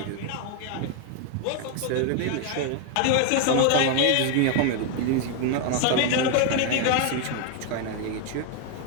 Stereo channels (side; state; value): both; different; correlation 0.01